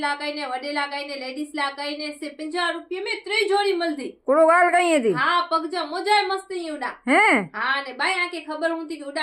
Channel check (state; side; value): identical; both; correlation 1.00